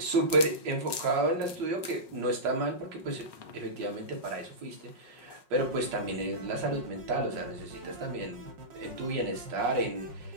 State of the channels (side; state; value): left; late; 5.5 ms